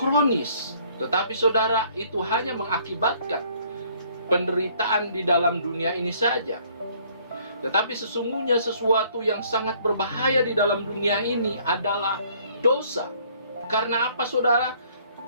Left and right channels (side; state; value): both; inverted; correlation -0.61